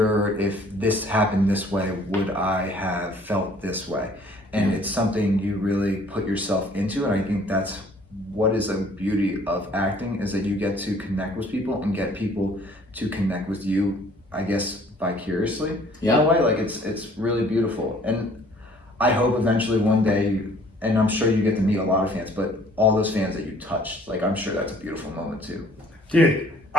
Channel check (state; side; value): normal; both; correlation 0.56